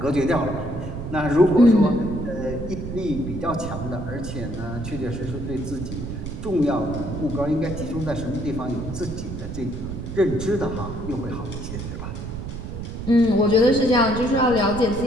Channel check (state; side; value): noise; right; rumble, 7 dB below the sound